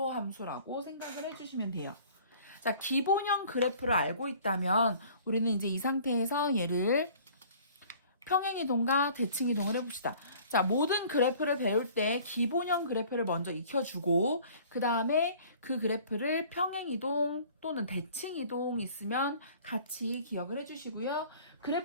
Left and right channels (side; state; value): both; inverted; correlation -0.51